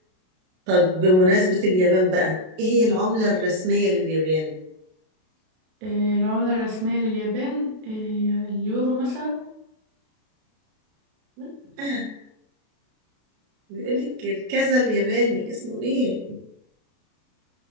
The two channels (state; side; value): late; left; 32 ms